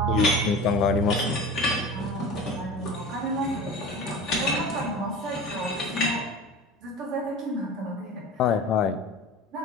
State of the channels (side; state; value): both; normal; correlation 0.35